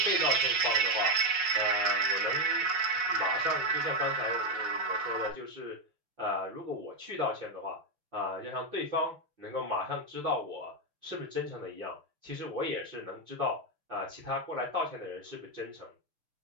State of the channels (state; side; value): late; left; 6.8 ms